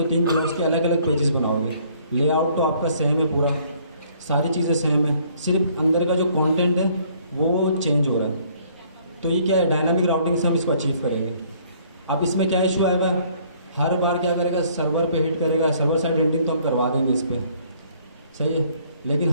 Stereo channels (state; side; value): inverted; both; correlation -0.61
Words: 3 ब्लॉग्स के अलग अलग पेजेस बनाओगे। लेआउट तो आपका सेम है, पूरा सारी चीज़ें सेम है, सिर्फ अंदर का जो कंटेंट है वो चेंज हो रहा है। तो ये क्या है, डायनामिक राउटिंग से हम इसको अचीव करेंगे। अब इसमें क्या इशू आएगा, हर बार क्या करेगा, सर्वर पे हिट करेगा। सर्वर साइड रेंडरिंग तो हम करवा देंगे इस पर, सही है, लेकिन